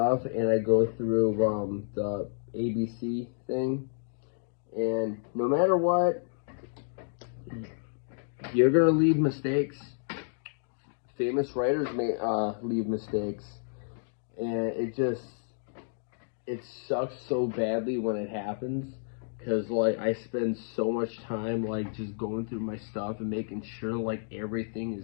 and I go through the ABC thing, and no matter what, you're gonna leave mistakes. Famous writers may leave mistakes, and it sucks so badly when it happens, because like I spend so much time like just going through my stuff and making sure like everything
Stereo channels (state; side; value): silent; right; digital silence